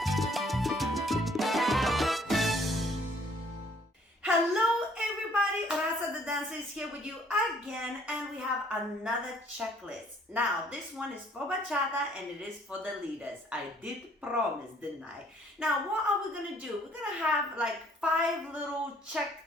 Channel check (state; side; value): normal; both; correlation 0.61